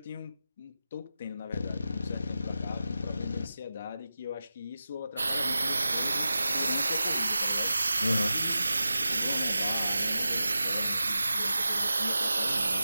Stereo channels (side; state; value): both; inverted; correlation -0.93